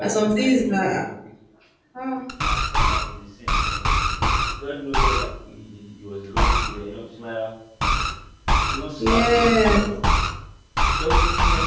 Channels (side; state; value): both; identical; correlation 1.00